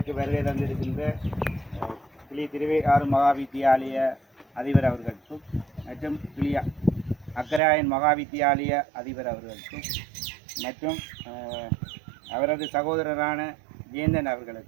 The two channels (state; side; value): drops out; left; at 7.6 s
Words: வருகை தந்திருக்கின்ற கிளி திருவையாறு மகா வித்தியாலய அதிபர் அவர்களுக்கும் மற்றும் கிளி அக்கராயன் மகா வித்தியாலய அதிபர் அவர்களுக்கும் மற்றும் அவரது சகோதரரான ஜெயந்தன்